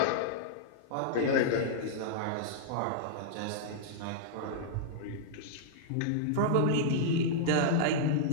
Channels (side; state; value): both; different; correlation -0.02